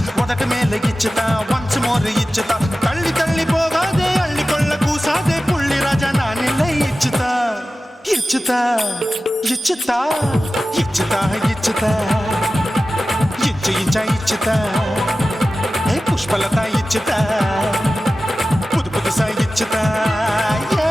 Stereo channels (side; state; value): both; normal; correlation 0.95